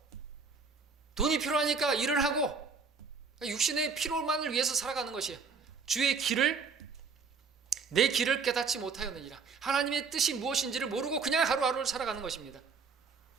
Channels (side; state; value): left; quieter; 5.2 dB